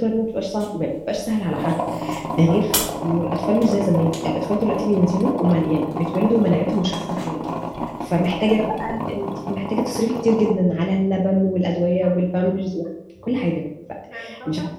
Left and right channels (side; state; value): both; identical; correlation 1.00